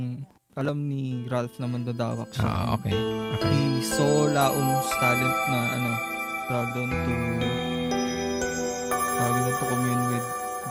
Ralph na mandadawak siya. Okay. He saw Laum's talent na tawag doon to commune with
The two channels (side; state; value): both; identical; correlation 1.00